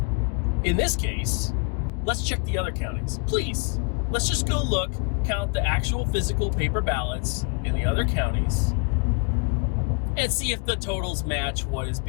in this case, let's check the other counties. Please, let's just go look, count the actual physical paper ballots in the other counties, and see if the totals match what is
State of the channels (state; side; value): quieter; right; 34.0 dB